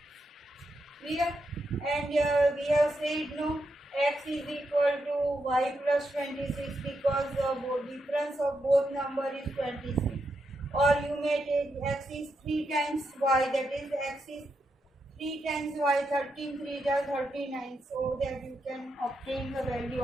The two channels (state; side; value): normal; both; correlation 0.83